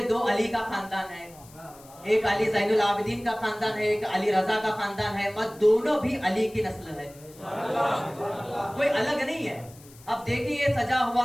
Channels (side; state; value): left; noise; hiss, 23 dB below the sound